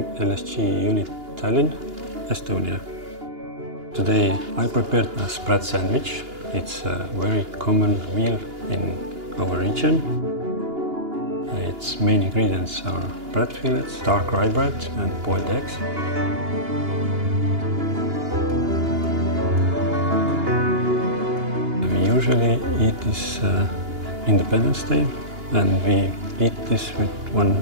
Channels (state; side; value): late; left; 2.9 ms